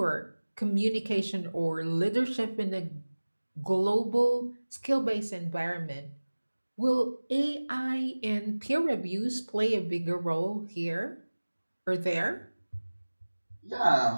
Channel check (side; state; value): both; inverted; correlation -1.00